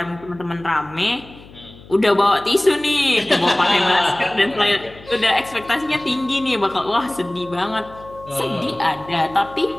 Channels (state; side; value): noise; left; hum, 21 dB below the sound